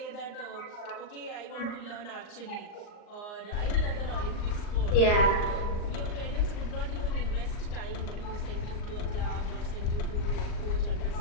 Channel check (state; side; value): late; right; 39 ms